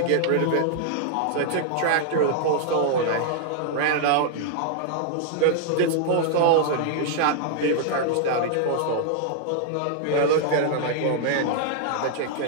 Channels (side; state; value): both; different; correlation -0.01